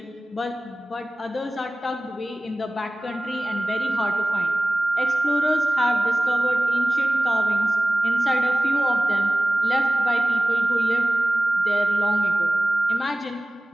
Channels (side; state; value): both; normal; correlation 0.96